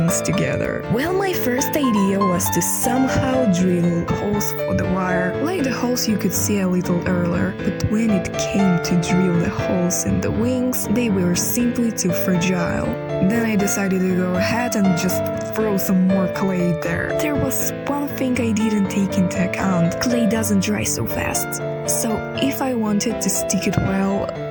together. Well, my first idea was to somehow drill holes for the wire, like the holes you could see a little earlier, but when it came to drill the holes in the wings, they were simply too fragile. Then I decided to go ahead and just throw some more clay there. There was one thing I didn't take into account. Clay doesn't dry so fast. So if I wanted to stick it well,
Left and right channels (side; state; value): both; identical; correlation 1.00